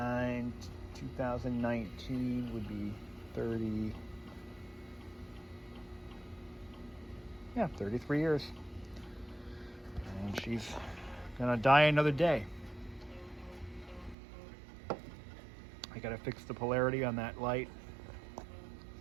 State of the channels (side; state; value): left; drops out; at 14.2 s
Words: 2019 would be 30. Yeah, 33 years. And she's gonna die another day. I gotta fix the polarity on that light.